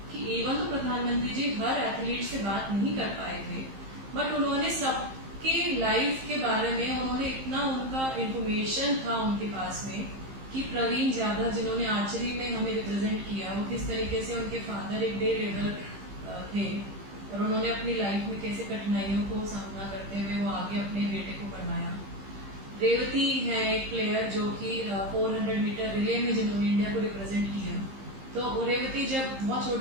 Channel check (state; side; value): late; left; 15 ms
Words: कि एवं तो प्रधानमंत्री जी हर एथलीट से बात नहीं कर पाए थे, बट उन्होंने सबके लाइफ के बारे में उन्होंने इतना, उनका इंफॉर्मेशन था उनके पास में कि प्रवीण जाधव जिन्होंने आर्चरी में हमें रिप्रेजेंट किया, वो किस तरीके से उनके फादर एक डे लेबर थे और उन्होंने अपनी लाइफ में कैसे कठिनाइयों को सामना करते हुए वो आगे अपने बेटे को बढ़ाया। रेवती है एक प्लेयर जो कि 400 मीटर रिले में जिन्होंने इंडिया को रिप्रेजेंट किया। तो रेवती जब बहुत